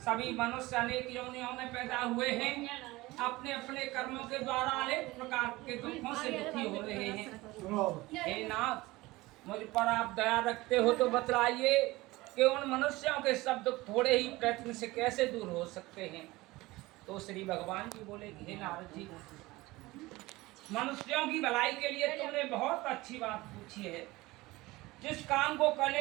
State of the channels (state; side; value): quieter; left; 20.2 dB